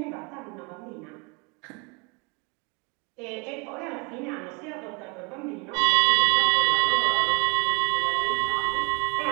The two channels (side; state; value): left; quieter; 30.6 dB